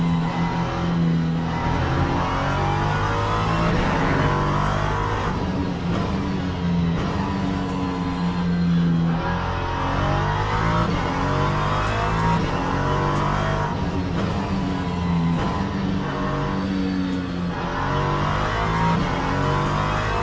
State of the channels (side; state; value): both; identical; correlation 1.00